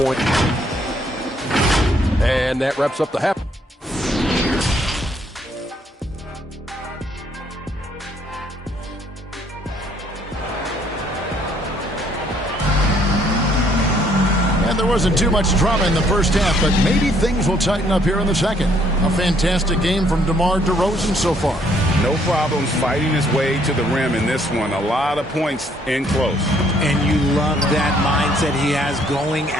And that wraps up the half. There wasn't too much drama in the first half, but maybe things will tighten up here in the second. A fantastic game from DeMar DeRozan so far. No problems fighting his way to the rim in this one. A lot of points in close. And you love that mindset he has going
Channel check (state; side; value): normal; both; correlation 0.66